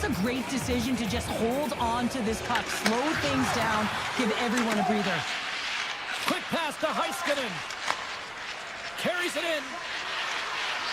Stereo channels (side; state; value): right; noise; rumble, 25 dB below the sound